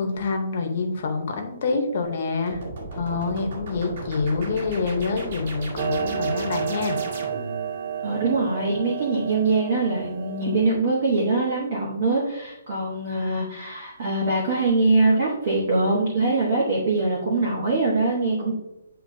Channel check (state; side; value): inverted; both; correlation -0.64